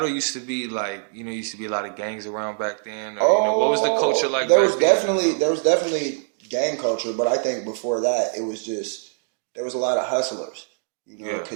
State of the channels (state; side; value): silent; left; 63 dB below the other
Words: used to be like, used to be a lot of gangs around back then? Or, what was the culture like there was definitely gang culture, but I think before that, it was just, there was a lot of hustlers,